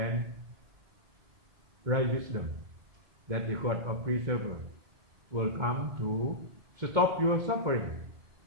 right wisdom, that the God of preserver will come to stop your suffering.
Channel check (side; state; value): left; late; 2.2 ms